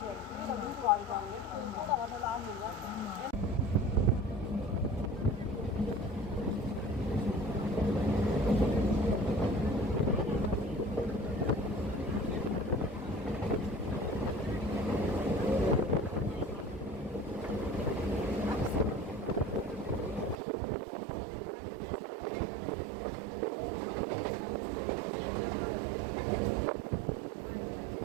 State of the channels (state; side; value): drops out; left; at 20.4 s